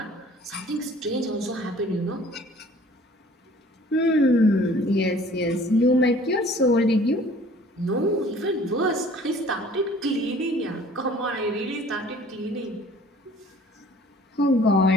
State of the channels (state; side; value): normal; both; correlation 0.52